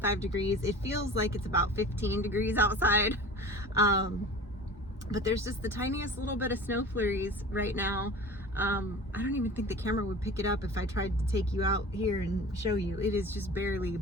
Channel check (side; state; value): both; normal; correlation 0.38